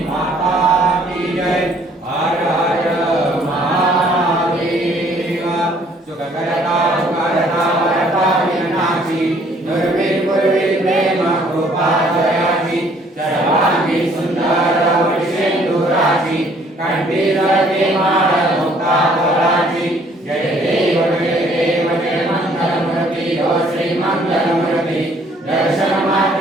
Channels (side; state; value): both; normal; correlation 0.61